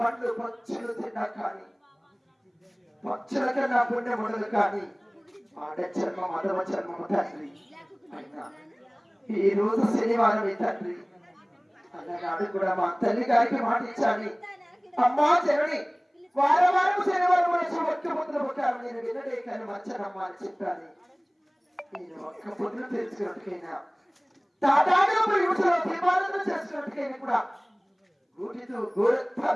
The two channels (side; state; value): both; identical; correlation 1.00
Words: పక్షులు తిన్నా కానీ పక్షుల కన్నా పుణ్యం ఉండదు కానీ ఆడ జన్మ మదవ జన్మము తండ్రి. అయినా ఈ రోజు శనివారం తండ్రి అన్నగాడు కూడా మా తల్లి గారికి మాట ఇచ్చాను, అమ్మా జనని వారం వారం శనివారం వచ్చి ఒక్క పొద్దున పుట్టాను నేను వినడే కానీ మచ్చనమ్మా అని చెప్పాను. నేను ఒక్క పొద్దున తెలుసుకున్నట్టుకైనా తాటాగా యువతలో దీపాలను చేసుకున్నట్టుకైనా కూడా గూటితో గోరత్తా